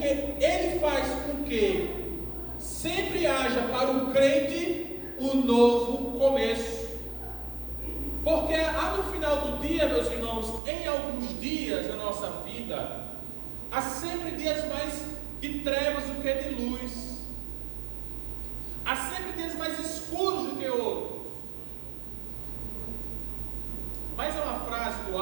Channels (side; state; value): left; drops out; at 10.6 s